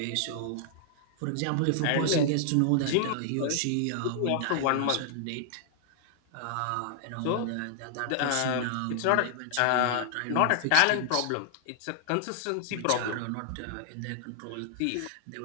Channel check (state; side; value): different; both; correlation -0.01